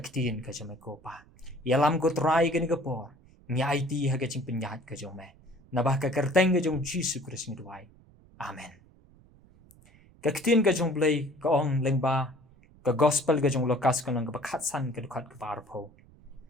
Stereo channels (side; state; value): right; noise; rumble, 26 dB below the sound